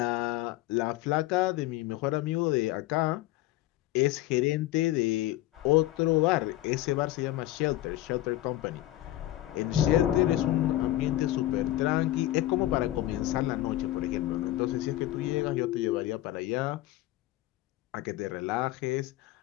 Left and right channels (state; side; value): quieter; right; 15.4 dB